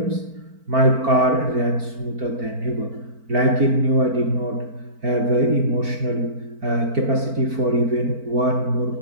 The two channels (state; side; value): late; left; 4.4 ms